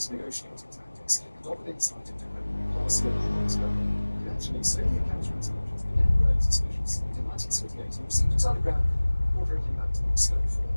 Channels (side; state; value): both; inverted; correlation -1.00